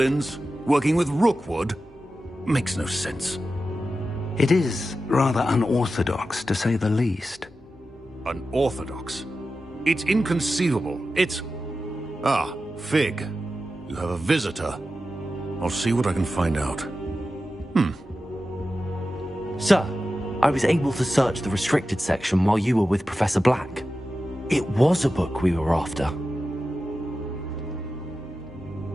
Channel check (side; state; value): both; normal; correlation 0.92